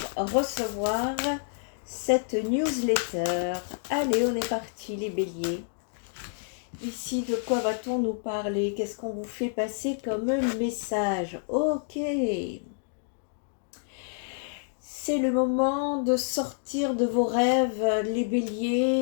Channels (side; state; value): right; silent; digital silence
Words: recevoir cette newsletter. Allez, on est parti les béliers. Ici, de quoi va-t-on nous parler? Qu'est-ce qu'on vous fait passer comme message? Ok. C'est le moment de sortir de vos rêves, les